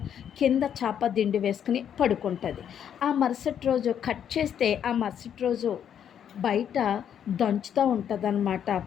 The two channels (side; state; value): right; quieter; 9.0 dB